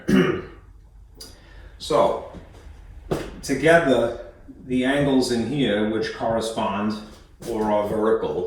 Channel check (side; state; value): both; identical; correlation 1.00